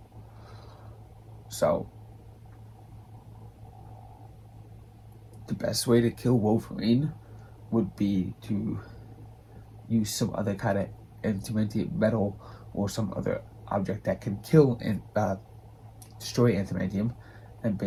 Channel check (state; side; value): identical; both; correlation 1.00